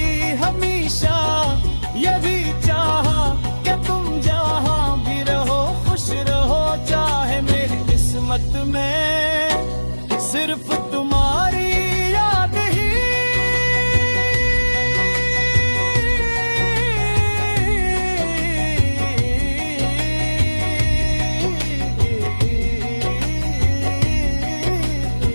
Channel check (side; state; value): both; inverted; correlation -1.00